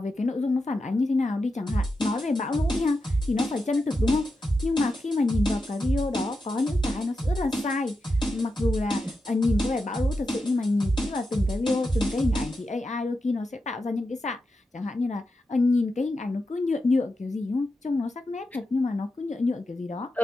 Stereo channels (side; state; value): both; normal; correlation 0.88